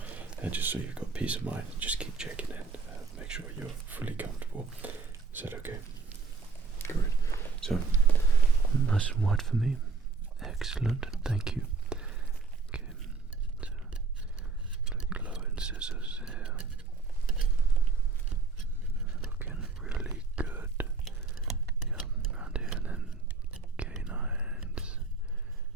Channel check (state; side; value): quieter; left; 4.6 dB